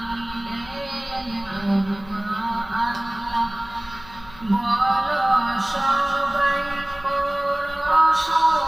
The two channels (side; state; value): left; noise; hum, 21 dB below the sound